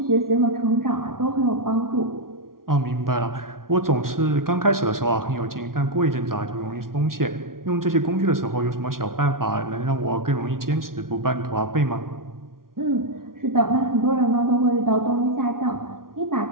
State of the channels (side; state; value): left; late; 0.92 ms